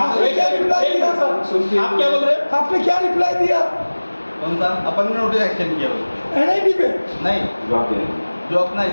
क्या रिप्लाई दिया? आप क्या बोल रहे हैं? आपने क्या रिप्लाई दिया? कौन सा अपन ने नोटिस एक्शन किया उसमें? NIT पे नहीं, जो अपना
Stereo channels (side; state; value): both; inverted; correlation -1.00